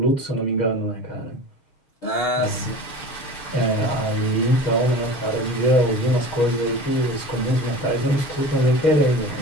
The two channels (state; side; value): late; right; 6.8 ms